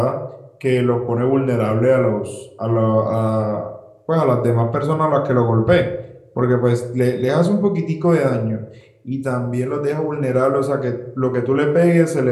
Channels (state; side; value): identical; both; correlation 1.00